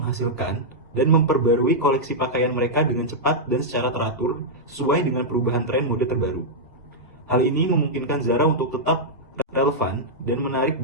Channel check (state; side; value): normal; both; correlation -0.06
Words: dan memperbarui koleksi pakaian mereka dengan cepat dan secara teratur sesuai dengan perubahan tren mode terbaru. Hal ini memungkinkan Zara untuk tetap relevan dan menarik